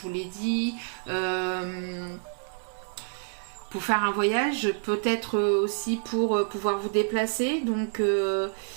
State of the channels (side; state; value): left; silent; digital silence